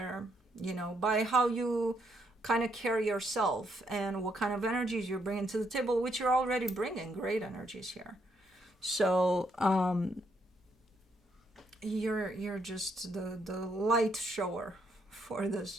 you know, by how you kind of carry yourself and what kind of energies you're bringing to the table, which you're already bringing great energies here. So you're just the light shower for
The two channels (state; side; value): normal; both; correlation 0.75